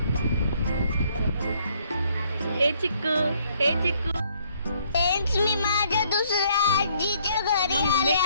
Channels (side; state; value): both; inverted; correlation -0.67